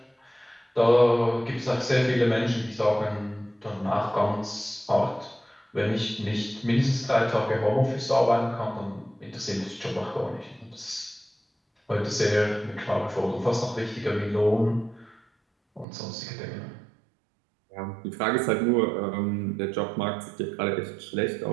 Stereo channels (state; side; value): drops out; left; at 15.9 s